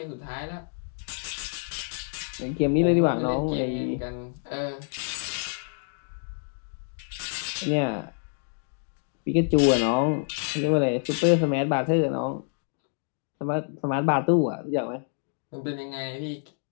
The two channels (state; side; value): silent; right; digital silence